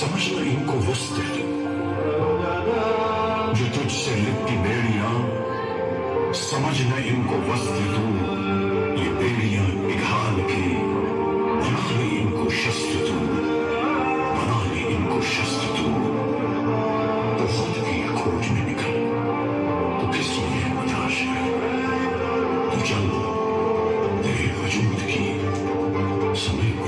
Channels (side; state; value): both; identical; correlation 1.00